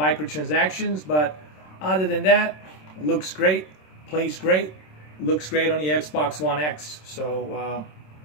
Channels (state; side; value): late; right; 27 ms